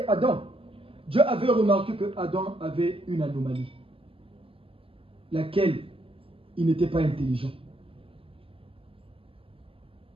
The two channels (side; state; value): left; late; 0.26 ms